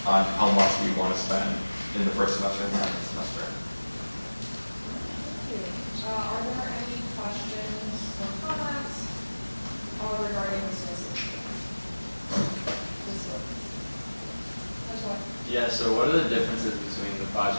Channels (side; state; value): both; inverted; correlation -1.00